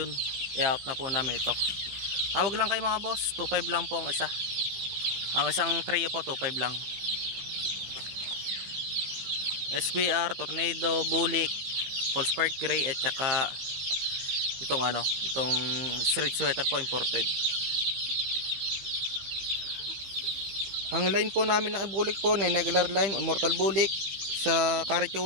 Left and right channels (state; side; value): late; left; 15 ms